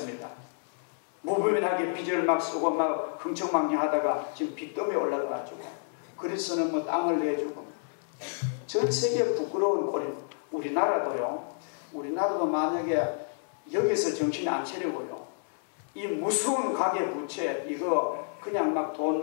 무분별하게 빚을 막 쓰고 막 흥청망청하다가 지금 빚더미에 올라가가지고 그리스는 뭐 땅을 내주고 전 세계 부끄러운 꼴이 우리나라도요. 우리나라도 만약에 여기서 정신이 안 차리고요. 이 무서운 가계 부채 이거 그냥 막 돈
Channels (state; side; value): silent; right; digital silence